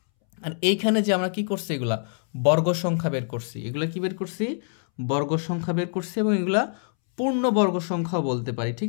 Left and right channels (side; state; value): right; silent; 62 dB below the other